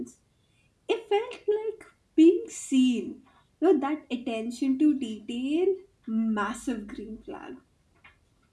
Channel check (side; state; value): both; identical; correlation 1.00